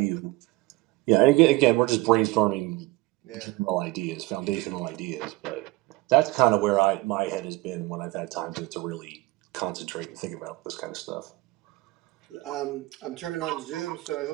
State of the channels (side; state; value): left; quieter; 20.5 dB